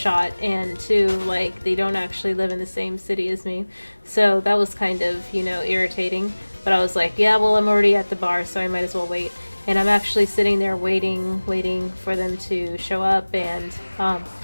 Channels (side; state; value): both; inverted; correlation -1.00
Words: and two, like, they don't actually live in the same city as me. So that was kind of, irritating. But I was like, yeah, well, I'm already at the bar, so I might as well wait. And I'm actually sitting there waiting for them to show up, and